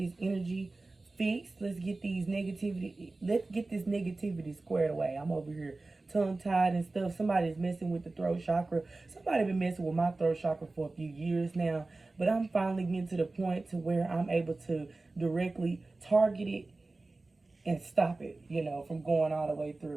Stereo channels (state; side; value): quieter; left; 3.3 dB